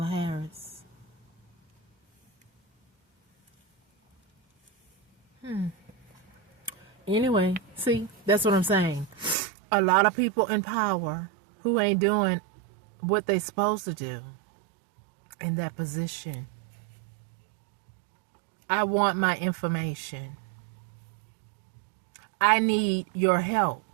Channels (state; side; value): drops out; left; at 9.3 s